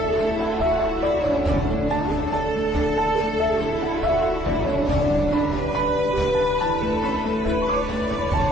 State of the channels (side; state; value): both; normal; correlation 0.64